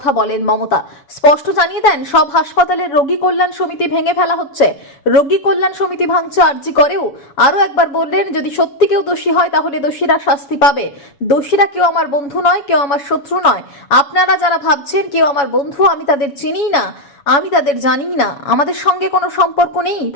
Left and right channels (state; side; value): late; right; 7.1 ms